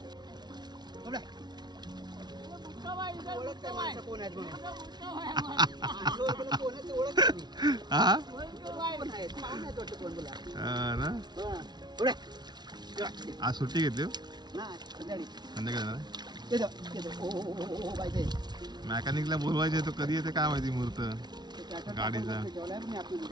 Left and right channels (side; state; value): left; late; 0.20 ms